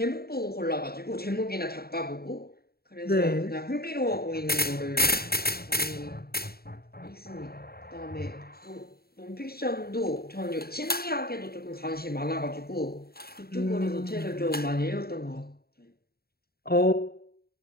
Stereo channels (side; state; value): right; late; 0.45 ms